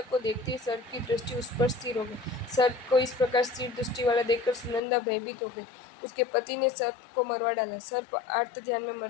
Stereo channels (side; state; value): right; drops out; at 4.8 s